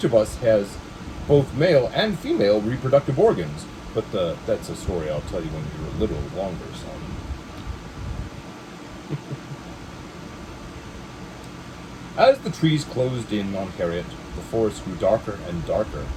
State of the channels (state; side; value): identical; both; correlation 1.00